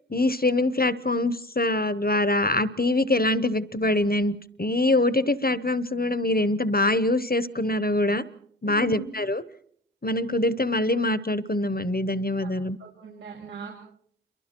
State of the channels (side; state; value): both; normal; correlation 0.38